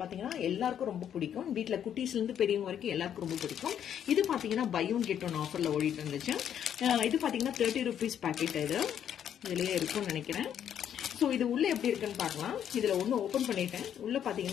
பாத்தீங்கன்னா எல்லாருக்கும் ரொம்ப பிடிக்கும். வீட்டுல குட்டீஸ்ல இருந்து பெரியவங்க வரைக்கும் எல்லாருக்கும் ரொம்ப பிடிக்கும். இது பாத்தீங்கன்னா பை ஒன் கெட் ஒன் ஆஃபர்ல ஓடிட்டு இருந்துச்சு. இது பாத்தீங்கன்னா 30 rupees பாக்கெட். இதுலயே இருக்கும்னு நினைக்கிறேன். ஸோ இது உள்ள எப்படி இருக்குன்னு பார்க்கலாம். இதுல ஒன்று ஓப்பன் பண்ணிட்டேன். உள்ள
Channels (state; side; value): quieter; right; 9.4 dB